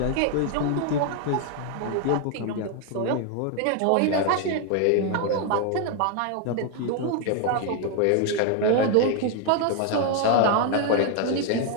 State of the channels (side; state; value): both; different; correlation 0.01